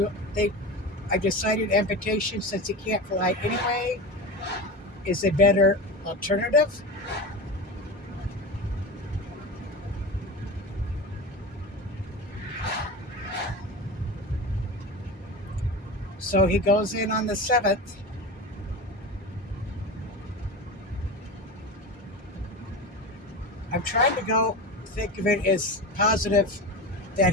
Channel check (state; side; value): normal; both; correlation 0.27